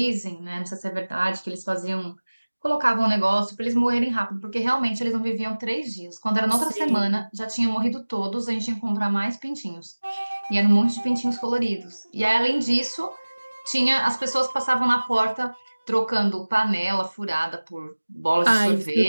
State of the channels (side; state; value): both; inverted; correlation -1.00